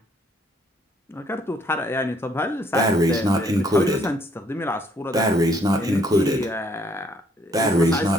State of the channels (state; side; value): normal; both; correlation 0.66